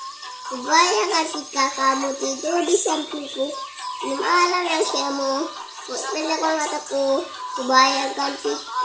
Kubayangkan jika kamu tidur di sampingku di malam yang semu. Pejamkan mataku, kubayangkan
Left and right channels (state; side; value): identical; both; correlation 1.00